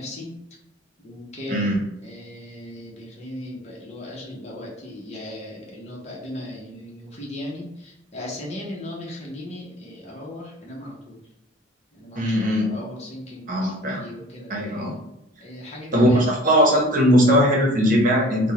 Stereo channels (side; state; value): both; normal; correlation 0.46